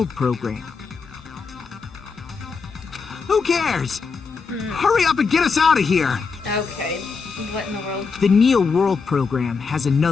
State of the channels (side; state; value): right; quieter; 5.0 dB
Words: program? Who cares? Hurry up and get us out of here! Okay. What in the world? The Neo World program has